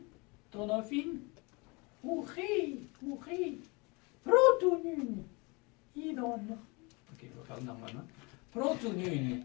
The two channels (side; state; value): right; quieter; 27.9 dB